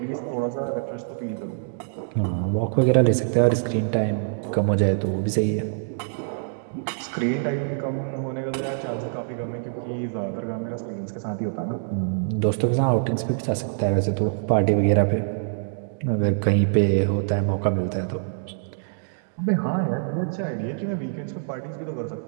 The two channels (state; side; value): silent; left; digital silence